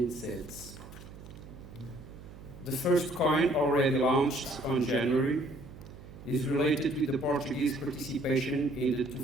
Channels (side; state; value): right; noise; hum, 16 dB below the sound